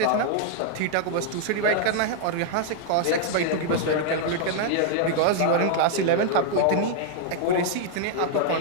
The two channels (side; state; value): both; different; correlation -0.01